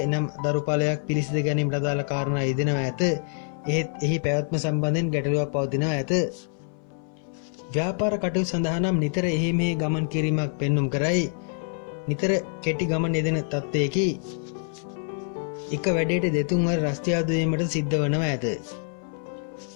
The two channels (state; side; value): silent; right; 60 dB below the other